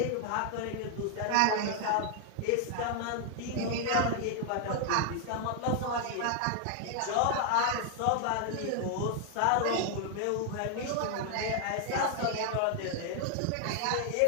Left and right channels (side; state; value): both; different; correlation 0.00